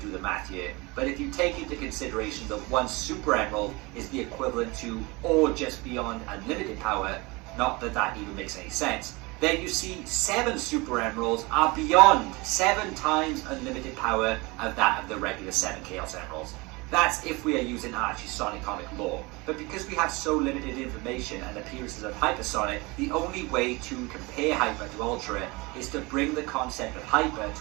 do the math here, but if you take into consideration that 1 Super Emerald is the equivalent to, or just beyond unlimited power, not that that even makes any sense, then you see 7 Super Emeralds are beyond 7 times unlimited power of that of the regular 7 Chaos Emeralds. That's if we are using Archie Sonic comic lore. But because we have so limited information and appearances of Hypersonic, the only way to compare Hyper to Ultra is to bring the concept of Hyper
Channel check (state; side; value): quieter; left; 24.9 dB